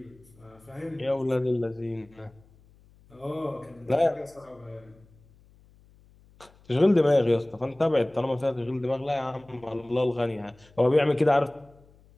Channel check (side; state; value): left; noise; hum, 28 dB below the sound